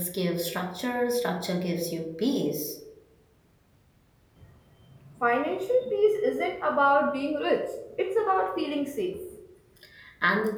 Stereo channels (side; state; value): both; identical; correlation 1.00